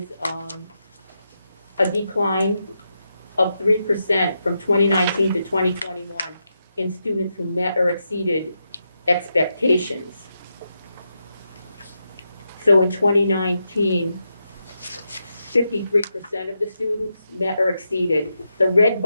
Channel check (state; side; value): inverted; both; correlation -0.85